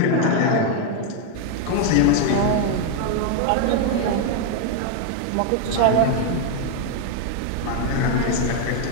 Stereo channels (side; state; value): both; different; correlation 0.01